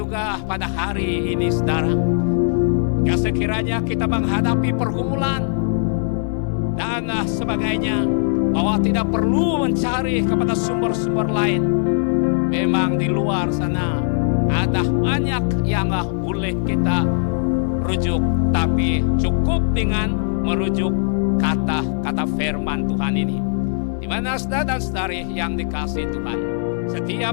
pada hari ini saudara, ya sekiranya kita menghadapi pergumulan dan sebagainya, bahwa tidak perlu mencari kepada sumber-sumber lain. Memang di luar sana ada banyak yang boleh kita rujuk, tapi cukup dengan merujuk kata-kata firman Tuhan ini. Di mana saudara dan saudari yang dikasihi Tuhan,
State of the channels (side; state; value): right; silent; digital silence